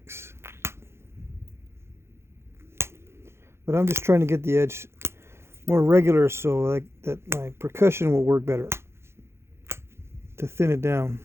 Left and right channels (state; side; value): late; left; 0.12 ms